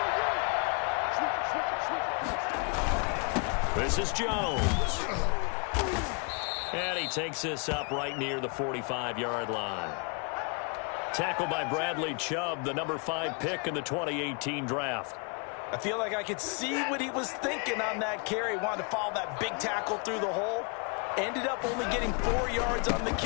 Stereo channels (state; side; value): quieter; right; 36.0 dB